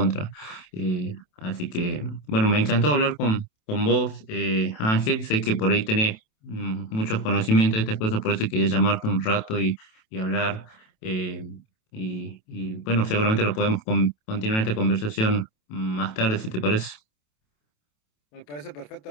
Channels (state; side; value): late; right; 27 ms